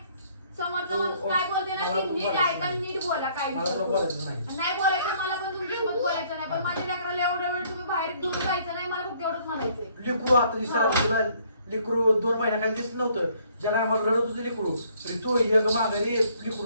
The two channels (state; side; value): inverted; both; correlation -0.63